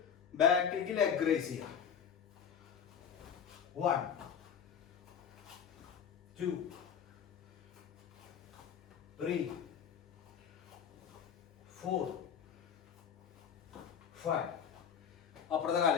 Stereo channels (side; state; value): right; quieter; 7.8 dB